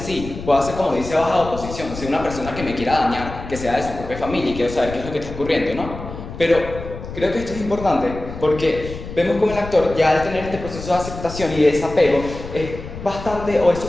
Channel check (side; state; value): left; noise; rumble, 11 dB below the sound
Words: pueda ser como dice baja oposición, ser una persona que me quiera dañar, que sea de su propia familia y quiero saber qué es lo que está ocurriendo, ¿no? Pero creo que esto es importante porque vemos como el actor ya al tener este proceso de aceptación y de desapego es bastante o es